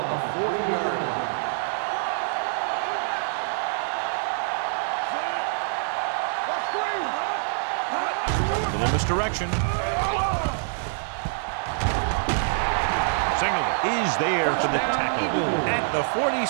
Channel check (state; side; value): silent; left; digital silence